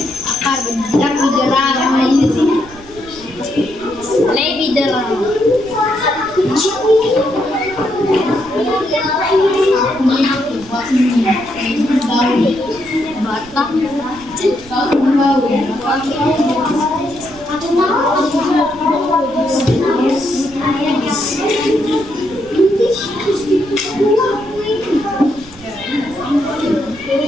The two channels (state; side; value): noise; right; rumble, 21 dB below the sound